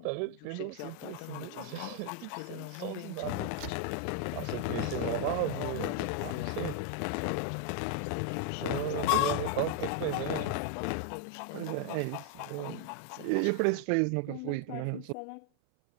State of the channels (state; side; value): different; both; correlation 0.00